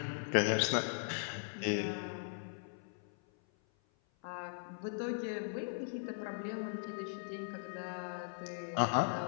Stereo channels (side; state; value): right; silent; 52 dB below the other